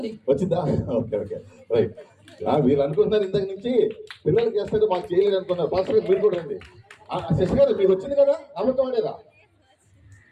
Okay right. వీళ్ళు అనుకుంటున్నారు ఇంతకు నుంచి పిల్లలకి చేస్తాడు, మాకు చేయలేదు అనుకున్నారు. ఫాస్ట్ గారు మీరు కూడా రండి. శశి గారు మీకు వచ్చింది కదా, అబద్ధం ఆడేదా?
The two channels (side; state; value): both; identical; correlation 1.00